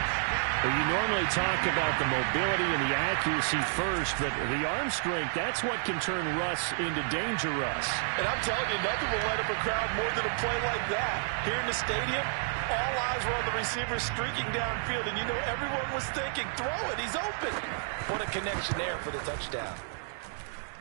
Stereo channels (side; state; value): left; silent; digital silence